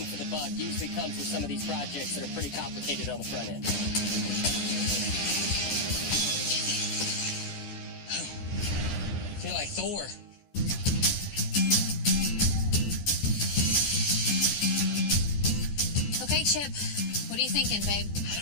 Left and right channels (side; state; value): right; late; 14 ms